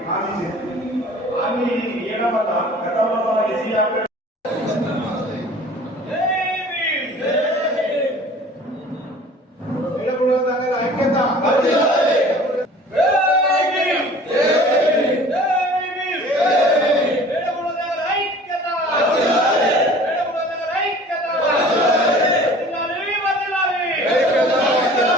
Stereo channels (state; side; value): normal; both; correlation 0.46